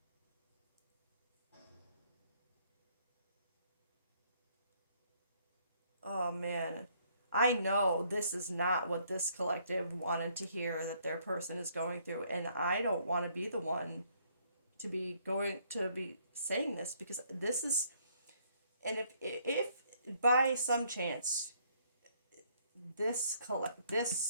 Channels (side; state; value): both; inverted; correlation -0.67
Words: Oh man. I know this is not what this collective wanted to hear that their person is going through, and I don't want to be the one to be saying this, because this is, and if by some chance this